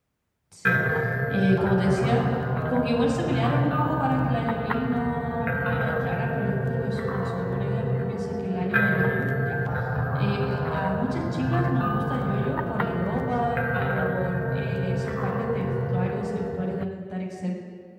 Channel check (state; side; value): identical; both; correlation 1.00